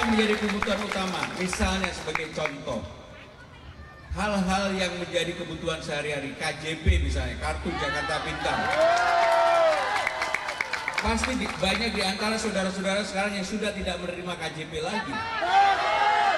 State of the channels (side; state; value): both; identical; correlation 1.00